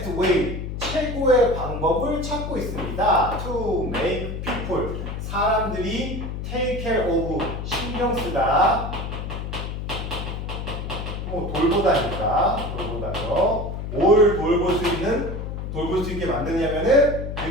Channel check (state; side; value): noise; left; hum, 5 dB below the sound